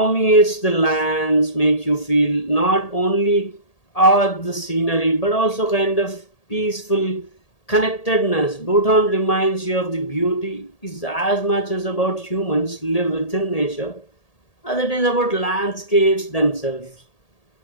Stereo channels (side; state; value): right; late; 1.8 ms